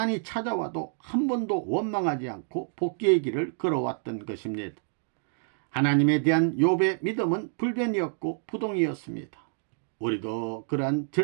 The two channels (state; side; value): silent; left; 59 dB below the other